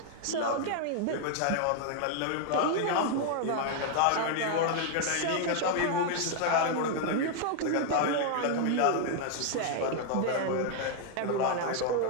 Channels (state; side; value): different; both; correlation 0.00